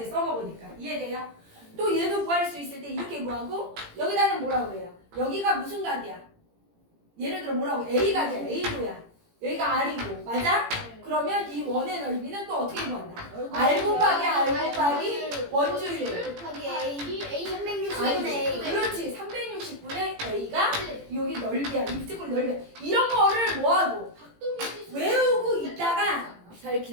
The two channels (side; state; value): left; late; 18 ms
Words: 써먹으니까. 이해돼요? 또 얘도 구할 수 있을 때 이렇게 구하고 여기다는 뭐라고 그래요? 여기가 무슨 각이야? 예를 들어 뭐라고? A각이야. A도야. 여기가 R이고. 맞아? 그러면 이 원의 넓이는 또 어떻게 구한다? R 곱하기 R 곱하기 원주율. 곱하기 A 360분의 아니지. A. 그렇지. 360분의 A가 여기 넓이야. 이 부채꼴 넓이야. 이런 거를 뭐하고 외우고 있다가 잘